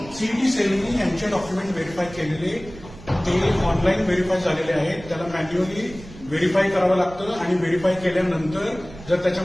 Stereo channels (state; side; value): noise; right; rumble, 17 dB below the sound